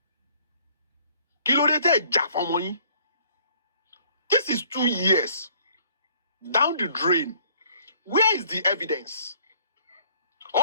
Kí ló dé tẹ́ jà fọ́mọ yín? This is 2 years down the drain. Where is the evidence?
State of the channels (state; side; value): inverted; both; correlation -0.59